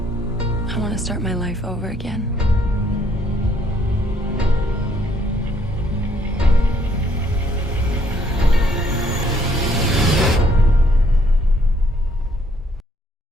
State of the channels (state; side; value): normal; both; correlation 0.68